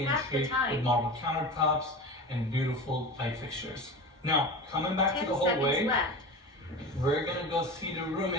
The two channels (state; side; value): normal; both; correlation 0.30